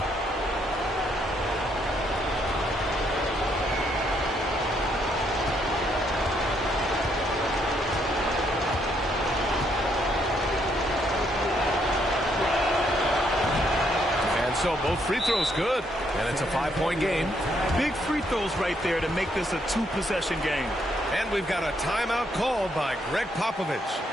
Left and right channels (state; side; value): normal; both; correlation 0.73